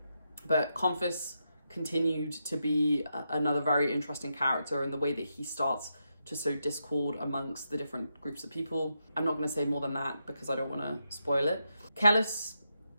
but Confus continued to be another very interesting character in the way that he starts to sow discord amongst the different groups of people. I'm not going to say more than that because I don't want to spoil it. Kellis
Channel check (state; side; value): inverted; both; correlation -0.84